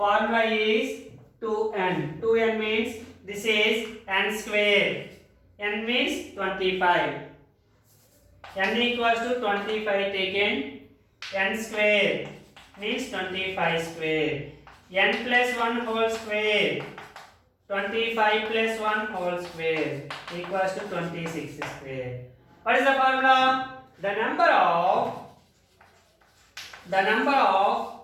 is 2n. 2n means this is n square. N means 25. N equals to 25 taken. N square means 25 square. N plus 1 whole square. 25 plus 1 whole square equals to 26 square. What is the formula? The number of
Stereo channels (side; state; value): both; identical; correlation 1.00